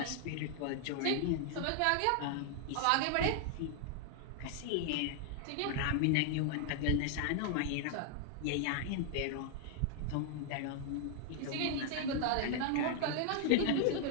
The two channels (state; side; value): different; both; correlation 0.00